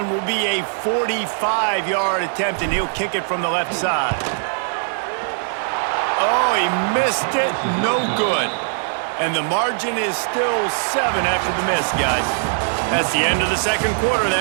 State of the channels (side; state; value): left; silent; digital silence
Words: will be a 45-yard attempt, and he'll kick it from the left side. Oh, he missed it. No good. And the margin is still 7 after the miss, guys. That's the end of the second quarter.